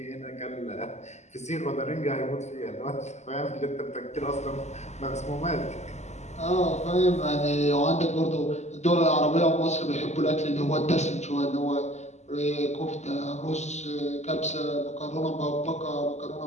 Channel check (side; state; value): right; late; 0.33 ms